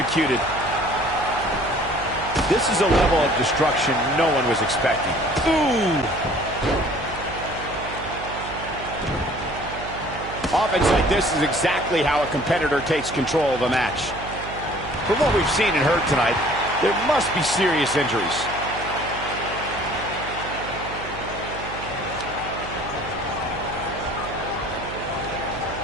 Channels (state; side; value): noise; right; hum, 12 dB below the sound